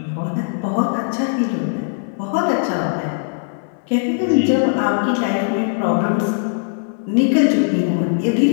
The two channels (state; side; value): silent; right; 61 dB below the other